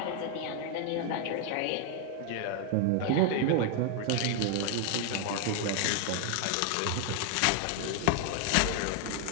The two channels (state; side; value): different; both; correlation 0.00